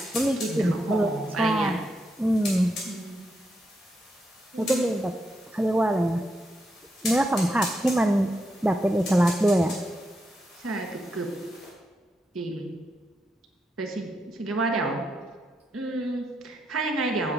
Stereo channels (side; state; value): both; normal; correlation 0.83